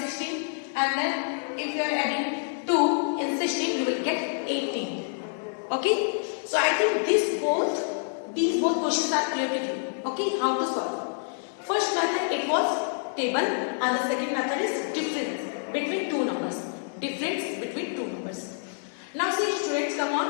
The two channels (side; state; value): right; silent; digital silence